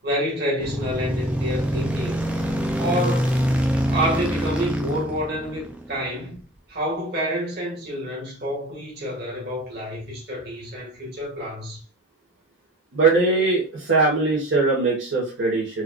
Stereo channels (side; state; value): both; normal; correlation 0.40